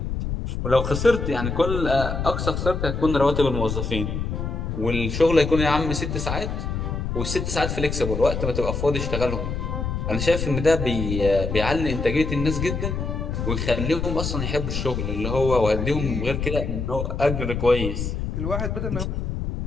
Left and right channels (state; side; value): noise; left; rumble, 3 dB below the sound